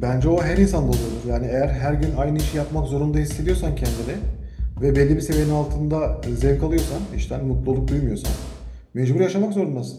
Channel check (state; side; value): identical; both; correlation 1.00